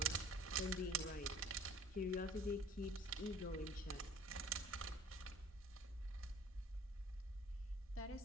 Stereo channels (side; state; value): both; normal; correlation 0.48